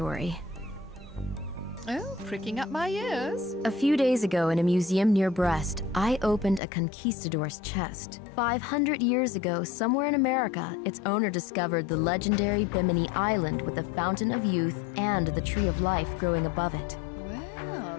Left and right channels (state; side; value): drops out; right; at 6.6 s